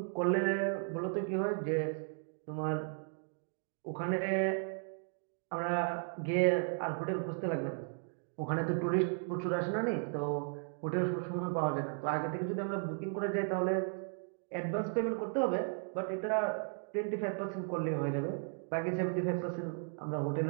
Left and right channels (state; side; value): silent; left; 54 dB below the other